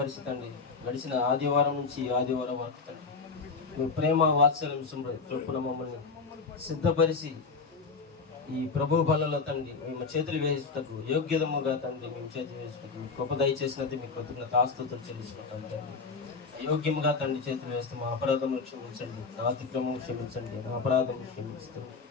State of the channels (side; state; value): right; quieter; 4.6 dB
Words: గడిచిన ఆదివారం నుంచి ఈ ఆదివారం వరకు తండ్రి మీ ప్రేమ వాత్సల్యం చొప్పున మమ్మల్ని సిద్ధపరిచి ఈ ప్రభు బలలో తండ్రి మేము చేతులు వేసుటకు యోగ్యతముగా తండ్రి మేము చేతులు వేసుటకు గొప్ప దయచేసినది మీకు కృతజ్ఞత ఆస్తుతులు చెల్లించుకుంటాం తండ్రి. యోగ్యముగా తండ్రి చేతులు వేస్తే మా అపరాధములు క్షమించండి, నా అతిక్రమం క్షమించండి, నా అపరాధం క్షమించండి